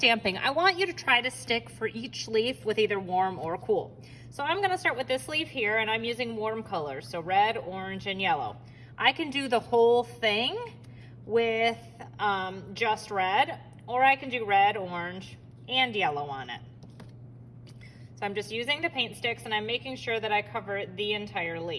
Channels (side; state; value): both; identical; correlation 1.00